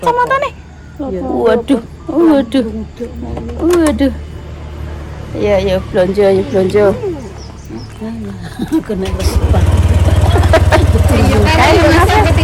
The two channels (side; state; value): both; identical; correlation 1.00